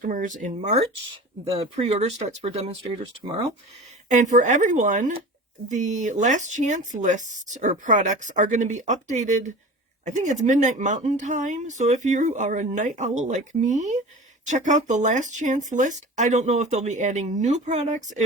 in March. The pre-order starts for demonstrators tomorrow. And for everyone, the last chance lists or products are going to be updated. I think it's midnight Mountain Time. So if you are a night owl like me, check out the last chance list. I don't know if they'll be adding new products,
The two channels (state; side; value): normal; both; correlation 0.36